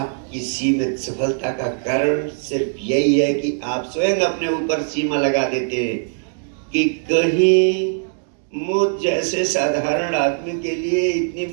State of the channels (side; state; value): left; silent; digital silence